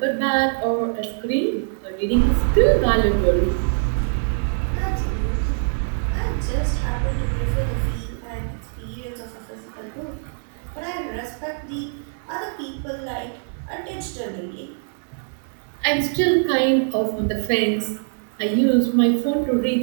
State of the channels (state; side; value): silent; left; digital silence